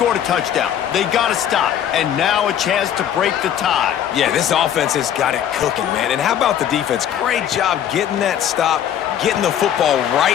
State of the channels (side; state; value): right; quieter; 9.9 dB